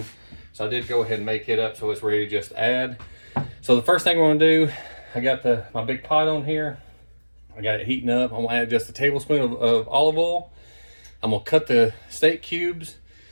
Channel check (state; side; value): inverted; both; correlation -1.00